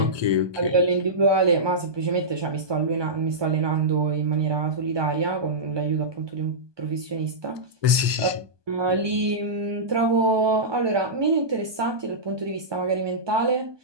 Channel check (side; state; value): left; late; 1.2 ms